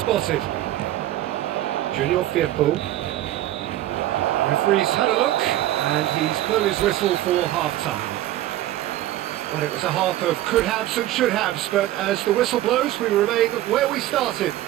Junior Firpo. Referee's had a look, and he's blown his whistle for half-time. Well, it was a half of could-haves and should-haves, but as the whistle blows, we remain where we started.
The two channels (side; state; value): left; quieter; 14.3 dB